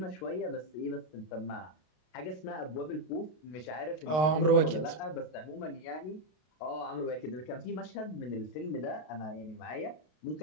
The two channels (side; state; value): right; late; 32 ms